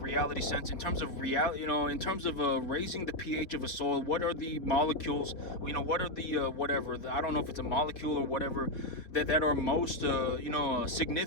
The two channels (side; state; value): right; late; 3.9 ms